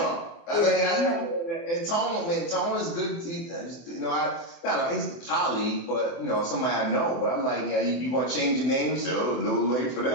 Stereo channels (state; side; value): late; right; 24 ms